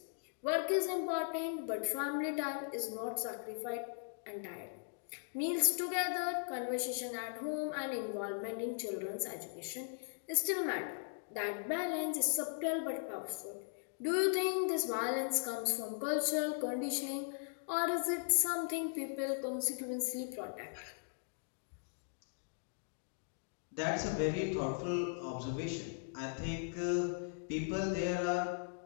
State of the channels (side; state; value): right; silent; digital silence